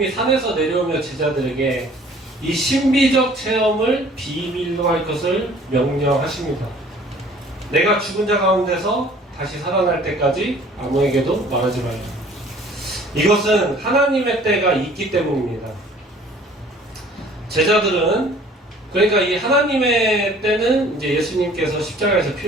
산에서 내려오며 제자들에게 이 신비적 체험을 비밀로 할 것을 명령하십니다. 내가 죽은 자 가운데서 다시 살아날 때까지 아무에게도 말하지 말라. 이것은 하나님의 때가 있기 때문입니다. 제자들은 그러니까 이 하나님의 때는 이제 예수님께서 십자가에서 피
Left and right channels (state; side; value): normal; both; correlation 0.53